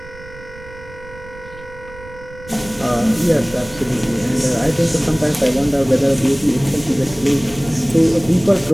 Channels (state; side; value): noise; right; rumble, 18 dB below the sound